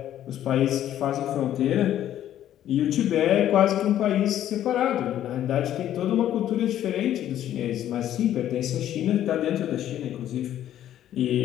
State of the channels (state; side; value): quieter; right; 11.7 dB